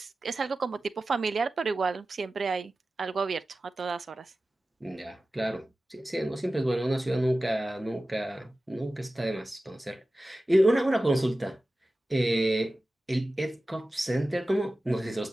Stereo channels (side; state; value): both; normal; correlation 0.95